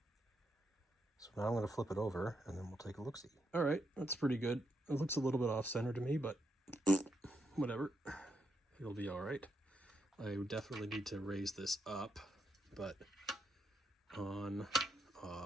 So now I'm going to flip it over, and then we'll take a look-see. All right, that's pretty good. It looks a little bit off-center to me, but whatever. It'll be all right. I definitely need to raise this up, but on,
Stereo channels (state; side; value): normal; both; correlation 0.81